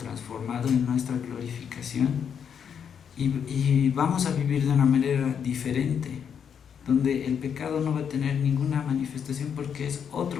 en nuestra glorificación y vamos a vivir de una manera diferente, donde el pecado no va a tener ninguna manifestación porque es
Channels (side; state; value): right; quieter; 7.6 dB